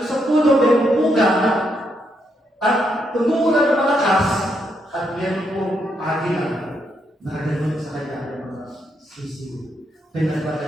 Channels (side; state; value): both; normal; correlation 0.78